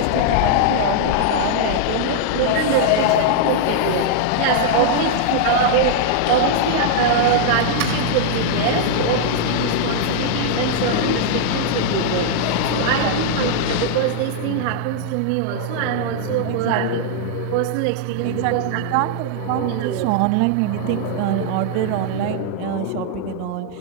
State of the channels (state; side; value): different; both; correlation -0.01